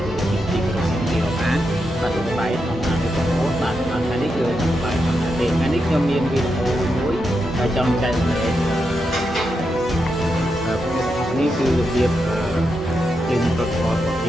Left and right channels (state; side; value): normal; both; correlation 0.85